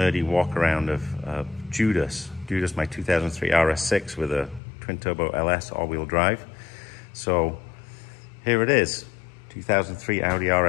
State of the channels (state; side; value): drops out; right; at 4.6 s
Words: walk around of Judas, my 2003 RS6 with a twin-turbo LS all-wheel drive. So here it is, 2003 Audi